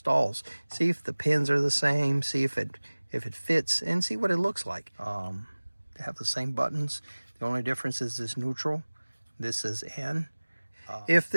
See if the pins are the same. See if it fits, and see what it looks like. They have the same buttons. The only difference is this neutral. This is N. If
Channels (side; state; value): both; inverted; correlation -1.00